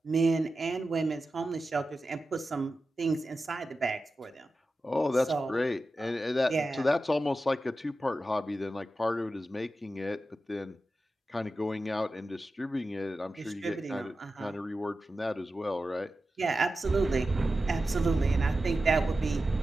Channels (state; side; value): normal; both; correlation 0.92